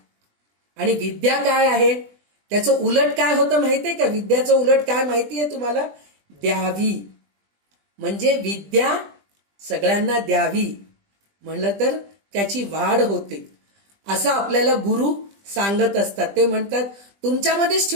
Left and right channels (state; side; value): late; left; 20 ms